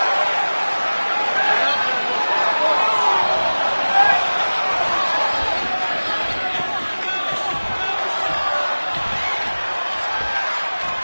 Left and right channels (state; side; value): inverted; both; correlation -1.00